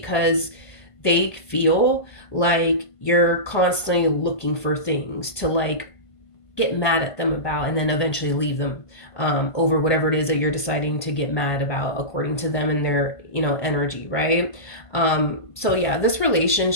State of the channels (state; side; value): late; right; 1.5 ms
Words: they feel like you're constantly looking for things to get mad at them about, and then eventually leave them over whatever it is that you're deciding to get mad about according to them and their energy, right? So yeah, this